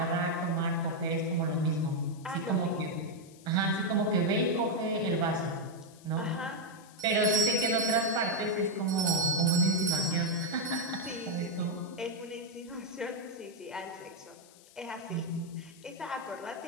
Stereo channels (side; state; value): left; noise; hiss, 24 dB below the sound